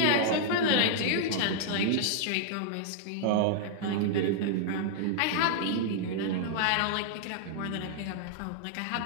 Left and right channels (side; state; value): both; different; correlation -0.01